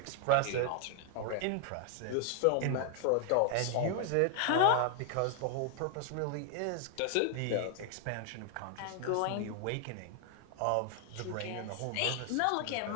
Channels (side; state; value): both; different; correlation 0.00